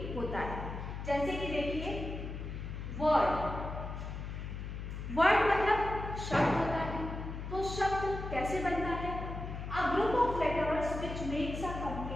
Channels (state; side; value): noise; left; hum, 7 dB below the sound